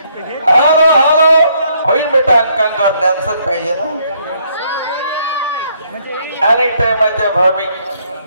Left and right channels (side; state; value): both; inverted; correlation -0.69